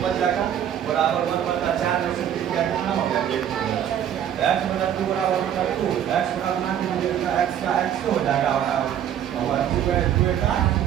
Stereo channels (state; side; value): quieter; left; 10.0 dB